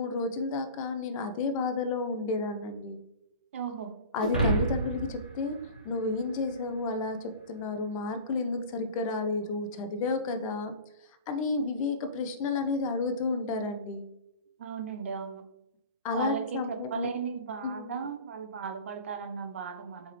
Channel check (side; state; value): both; inverted; correlation -0.37